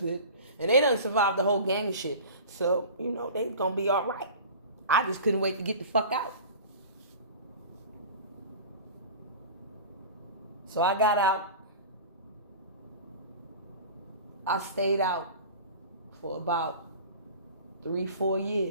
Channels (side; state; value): both; inverted; correlation -0.37